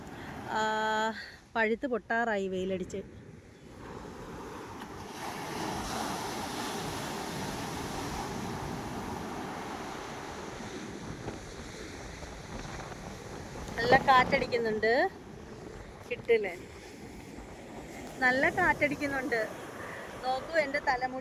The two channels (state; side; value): identical; both; correlation 1.00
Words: പഴുത്ത് പൊട്ടാറായി വെയിലടിച്ച്. നല്ല കാറ്റടിക്കുന്നുണ്ട്, കിട്ടില്ലേ? നല്ല കാറ്റടിക്കുന്നുണ്ട്. നോക്കൂ, എൻ്റെ